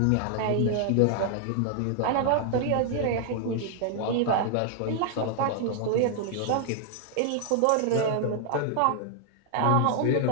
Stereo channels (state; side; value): different; both; correlation 0.00